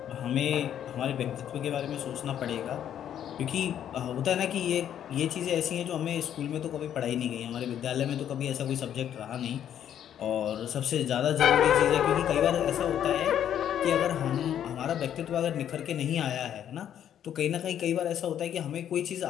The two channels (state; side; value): quieter; right; 10.0 dB